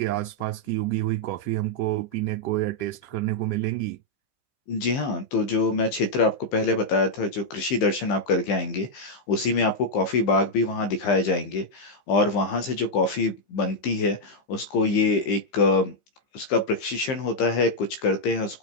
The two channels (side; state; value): right; late; 15 ms